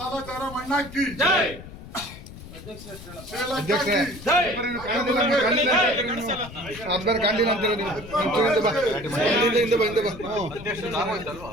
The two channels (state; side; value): noise; left; rumble, 15 dB below the sound